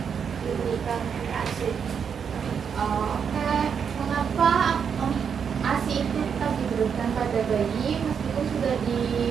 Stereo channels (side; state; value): left; quieter; 7.0 dB